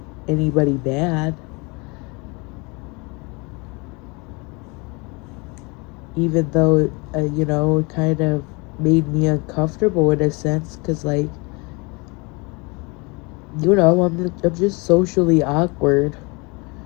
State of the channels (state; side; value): quieter; right; 28.5 dB